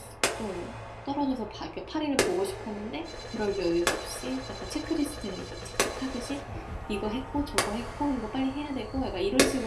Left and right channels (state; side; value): identical; both; correlation 1.00